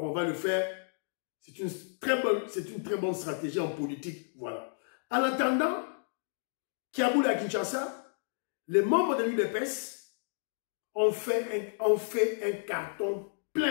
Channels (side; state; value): right; silent; digital silence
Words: on va le faire. C'est une très bonne stratégie en politique. Voilà. En attendant, Kiaboula à Kinshasa, les membres de l'UDPS ont fait un carton